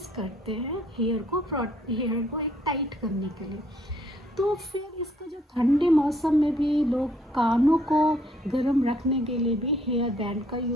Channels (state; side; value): normal; both; correlation 0.65